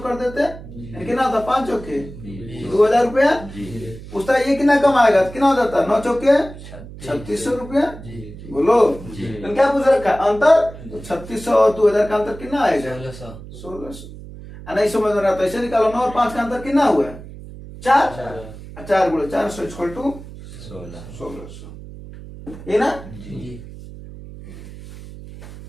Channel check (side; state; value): right; noise; hum, 15 dB below the sound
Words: कर देते, यानी कितना होता 5 चौके 2000 रुपया। पूछता है ये कितना कमाएगा, कितना हो जाता 9 चौके 3600 रुपया। बोलो तो क्या पूछ रखा अंतर, तो 3600 और 2000 का अंतर कितना आएगा 1600। नहीं समझ में रहा तो ऐसे निकालो 9 और 5 का अंतर कितना हुआ 4, 4 गुणे 400 इक्वल टू 1600, ये ना।